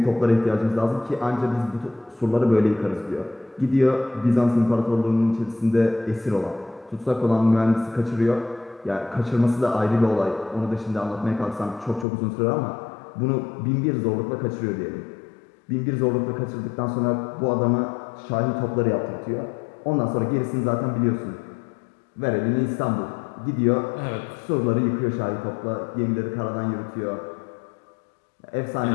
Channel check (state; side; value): drops out; right; at 12.1 s